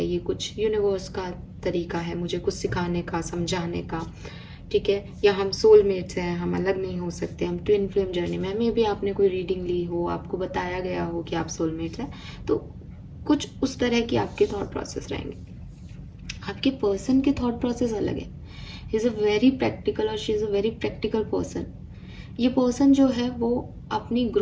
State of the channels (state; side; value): identical; both; correlation 1.00